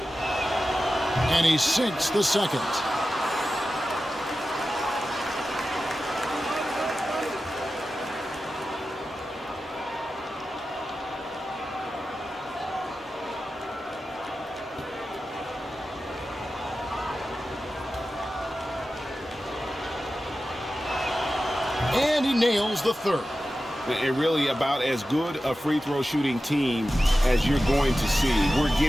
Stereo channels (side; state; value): both; normal; correlation 0.93